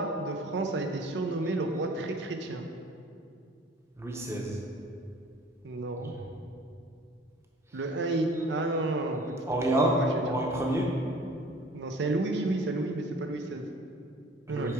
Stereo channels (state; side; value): normal; both; correlation 0.48